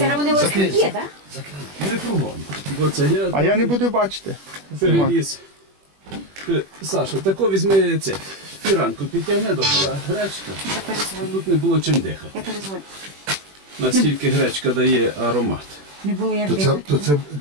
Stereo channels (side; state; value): left; late; 21 ms